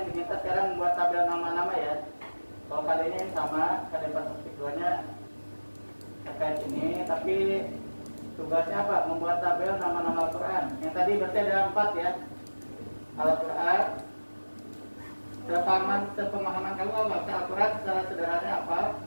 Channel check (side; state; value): both; inverted; correlation -1.00